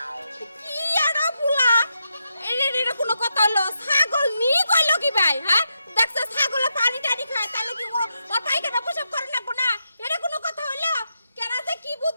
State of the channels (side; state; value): both; inverted; correlation -0.84